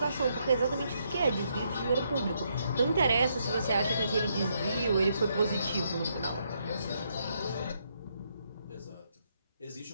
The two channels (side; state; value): both; inverted; correlation -0.76